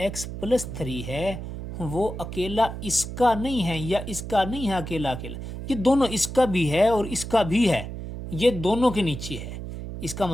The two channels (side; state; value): right; noise; hum, 8 dB below the sound